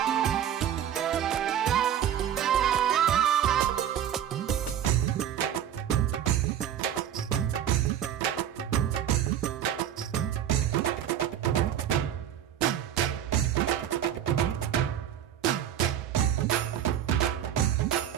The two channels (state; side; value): quieter; left; 10.1 dB